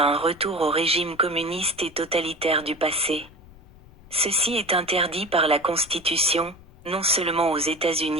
un retour au régime communiste et totalitaire du passé. Ceci est interdit par la Constitution, non seulement aux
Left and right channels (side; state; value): left; noise; rumble, 23 dB below the sound